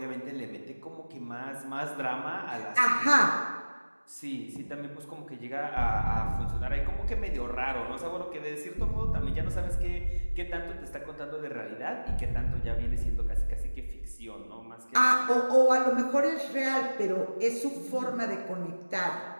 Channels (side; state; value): both; inverted; correlation -1.00